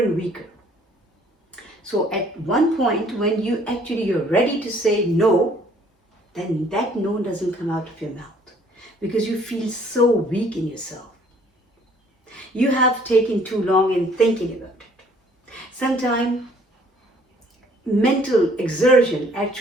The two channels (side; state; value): both; normal; correlation 0.59